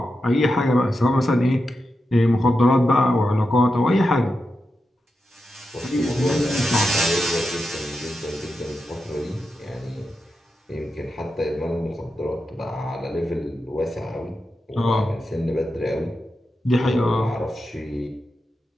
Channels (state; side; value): normal; both; correlation 0.88